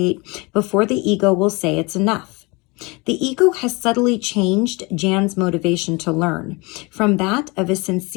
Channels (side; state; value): right; quieter; 26.7 dB